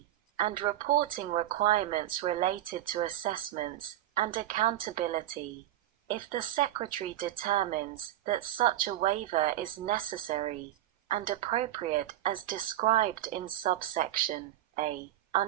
and reporting requirements related to assessments and accountability. If the Secretary determines that such a waiver is necessary and appropriate as described in subsection A,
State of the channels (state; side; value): quieter; left; 13.5 dB